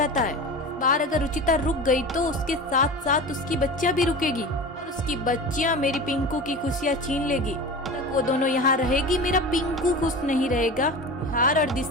है। इस बार अगर रुचिता रुक गई तो उसके साथ साथ उसकी बच्चियां भी रुकेगी और उसकी बच्चियां मेरी पिंकू की खुशियां छीन लेगी। तक वो दोनों यहाँ रहेगी, मेरा पिंकू खुश नहीं रहेगा। निहार और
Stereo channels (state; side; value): normal; both; correlation 0.32